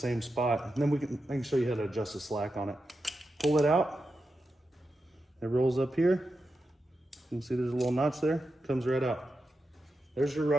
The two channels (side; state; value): both; normal; correlation 0.89